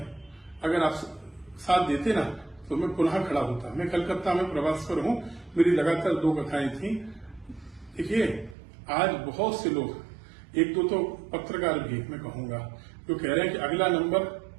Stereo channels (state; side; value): drops out; left; at 8.6 s